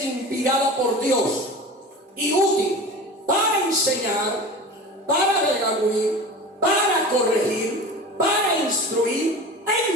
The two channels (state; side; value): normal; both; correlation 0.34